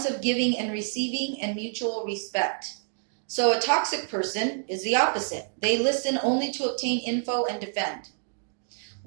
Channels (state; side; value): silent; left; digital silence